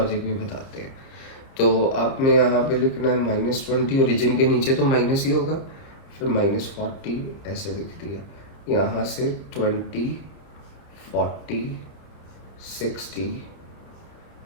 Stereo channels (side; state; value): right; late; 30 ms